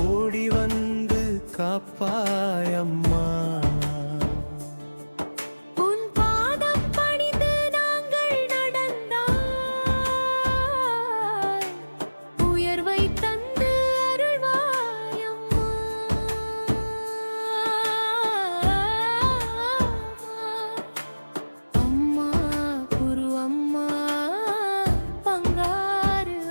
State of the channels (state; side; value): inverted; both; correlation -1.00